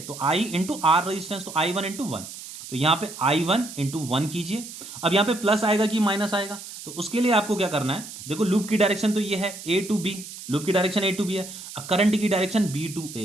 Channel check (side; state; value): right; noise; hiss, 12 dB below the sound